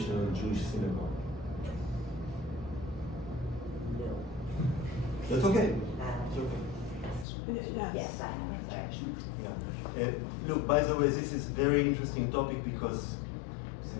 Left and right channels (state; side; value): drops out; right; at 7.2 s